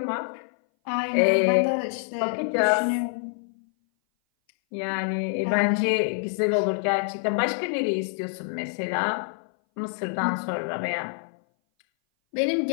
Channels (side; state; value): right; silent; 58 dB below the other